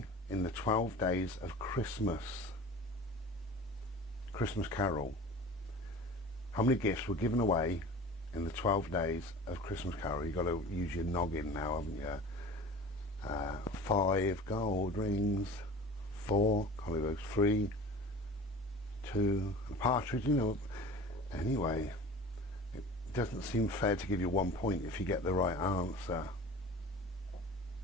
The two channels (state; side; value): normal; both; correlation 0.39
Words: in the 12 days of Christmas Carol? How many gifts were given away in the 12 days of Christmas Carol? You've got to use your noggin now, haven't you? 5 gold rings, 4 collywokes, 3, 2, a partridge, you know. Anyway, it doesn't seem fair to give you 1 point if you get the right answer.